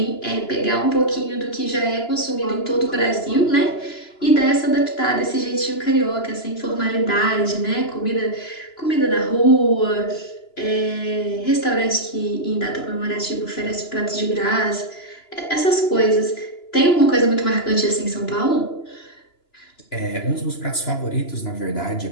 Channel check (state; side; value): late; right; 2.9 ms